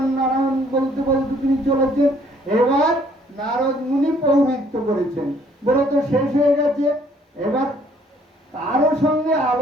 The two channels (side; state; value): both; normal; correlation 0.62